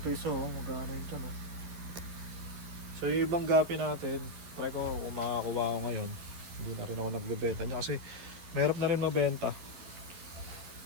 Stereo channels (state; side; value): late; left; 12 ms